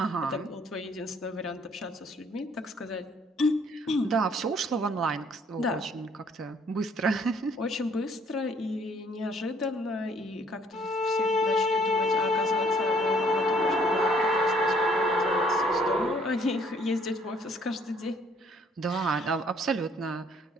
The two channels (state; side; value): normal; both; correlation 0.62